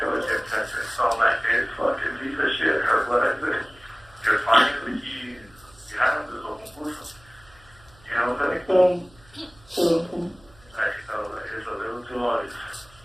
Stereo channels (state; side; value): noise; right; hum, 27 dB below the sound